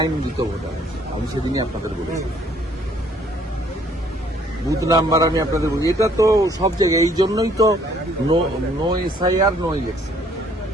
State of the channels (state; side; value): normal; both; correlation 0.62